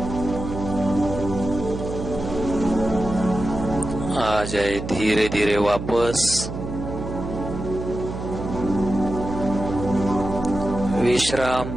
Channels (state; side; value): noise; right; hum, 7 dB below the sound